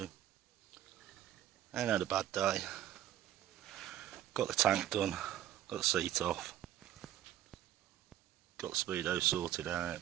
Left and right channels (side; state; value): left; quieter; 12.3 dB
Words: Ain't had a bad day. Got the tank done, got the seat off, got the speedo sorted out,